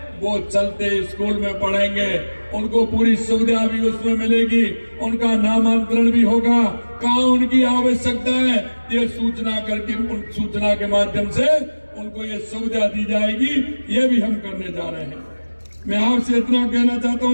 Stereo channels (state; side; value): inverted; both; correlation -1.00